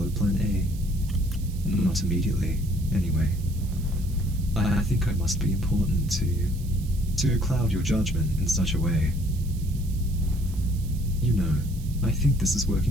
Plan A. Not immediately, anyway. I think I must be important to you, to cloud your judgment in such a way. You know, I think this is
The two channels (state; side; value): noise; right; hiss, 20 dB below the sound